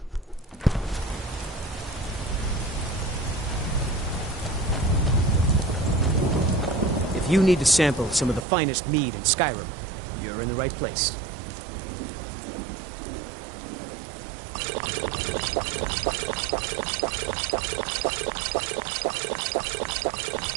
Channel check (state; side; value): drops out; left; at 8.5 s